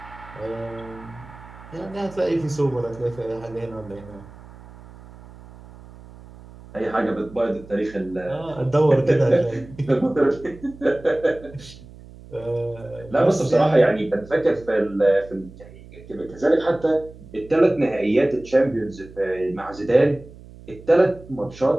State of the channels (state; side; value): noise; right; hum, 19 dB below the sound